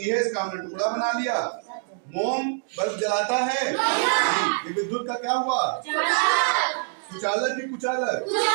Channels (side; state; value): left; silent; digital silence